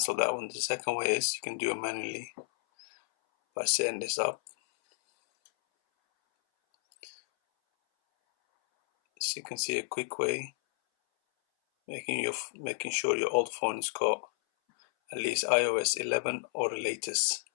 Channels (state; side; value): silent; right; 57 dB below the other